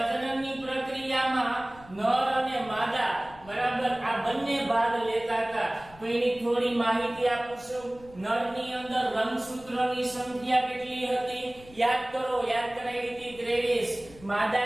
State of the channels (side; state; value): left; noise; rumble, 22 dB below the sound